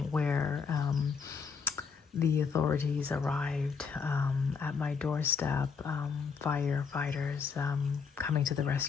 where the authorities arrived at my doorstep, firefighters coming to the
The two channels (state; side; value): quieter; right; 5.7 dB